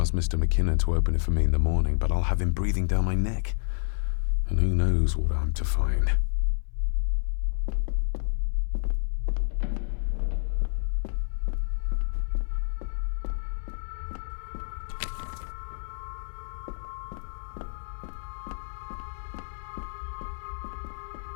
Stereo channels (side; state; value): right; silent; 59 dB below the other